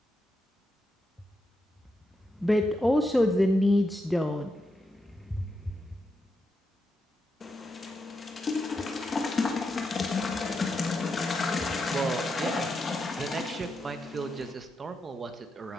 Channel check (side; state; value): both; normal; correlation 0.85